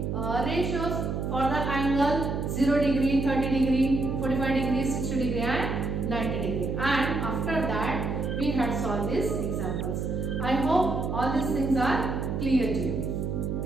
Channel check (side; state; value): right; noise; hum, 2 dB below the sound